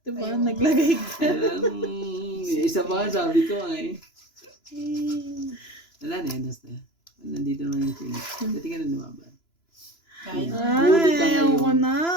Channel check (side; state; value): right; late; 3.0 ms